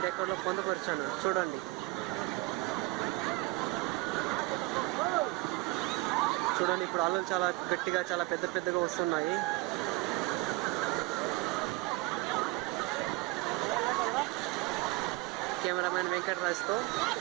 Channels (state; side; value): quieter; left; 22.1 dB